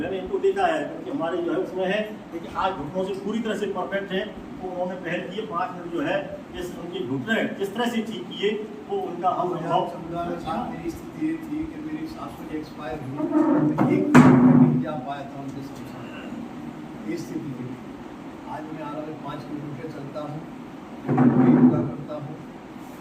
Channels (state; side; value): identical; both; correlation 1.00